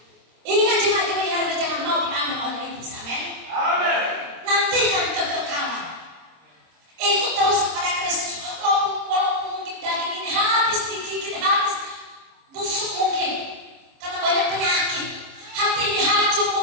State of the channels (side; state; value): left; late; 26 ms